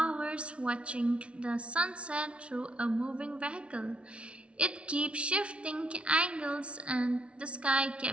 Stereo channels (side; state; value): left; late; 0.060 ms